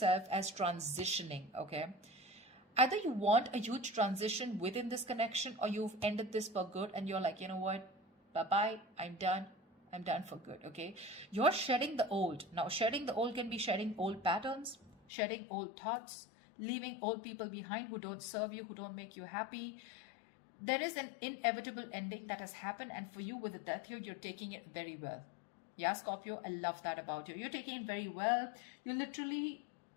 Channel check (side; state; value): right; drops out; at 15.0 s